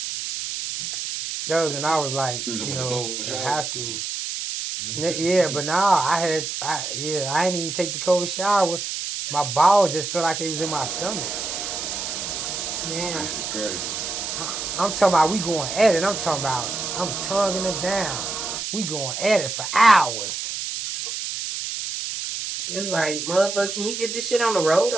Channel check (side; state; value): right; noise; hiss, 4 dB below the sound